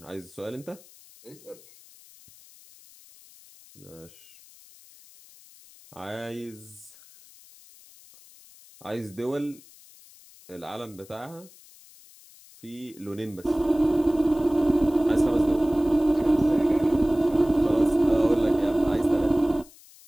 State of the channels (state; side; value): noise; left; hiss, 24 dB below the sound